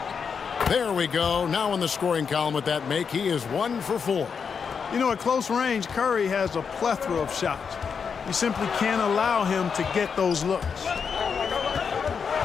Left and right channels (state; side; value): quieter; right; 6.2 dB